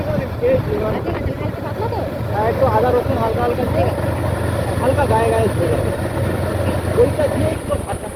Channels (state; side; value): identical; both; correlation 1.00